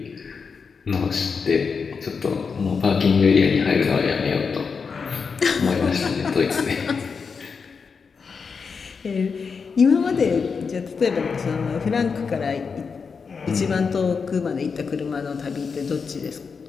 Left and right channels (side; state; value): right; quieter; 5.5 dB